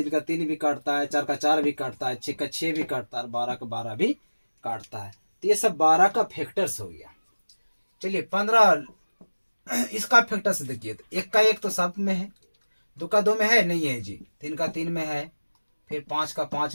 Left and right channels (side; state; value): both; inverted; correlation -1.00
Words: का 3 भी काटता है, 4 का 4 भी काटता है, 6 का 6 भी काटता है, 12 का 12 भी काटता है। तो ये सब 12 का फैक्टर्स हो गया। चलिए 15 इसका फैक्टर्स देखिए, तो 1 का 1 तो सब में है, 2 का 2 में है नहीं है जी, 3 का 3 में है, फिर 5 का